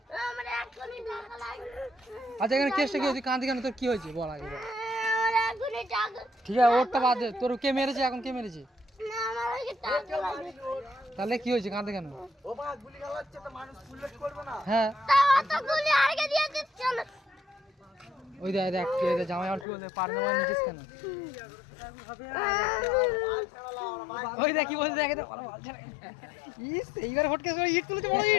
আমার এখনই টাকা লাগবে। আচ্ছা এখানে কেসটা কি হয়েছে কাঁদি কেন তোর কি হয়েছে বল আগে বল। আমার এখনই টাকা। ঠিক আছে ওরটা বাদ দে তোর কে মেরেছে এখন কে মেরেছে? না আমার আগে টাকা লাগবে। তাহলে কি হয়েছে কাঁদে কেন? ও মা গুলি চালাচ্ছে তো মানুষ পুলিশ করবে না। হ্যাঁ তাও অত গুলি আগে দিয়ে দিচ্ছ না। ওই দেখ জামাই আর কি বলতে পার না নিচিস কেন? ওই দেখ কি বলছে দেখে তো ভালো বল ছাড়া। ইস এইবার ফটকে ইট তুলেছে বড়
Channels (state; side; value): drops out; right; at 19.7 s